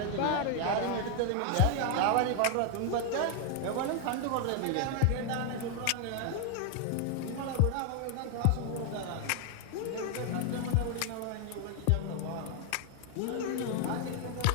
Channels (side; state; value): both; different; correlation 0.00